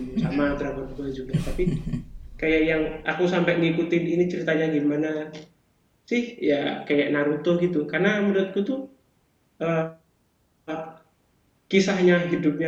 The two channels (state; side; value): identical; both; correlation 1.00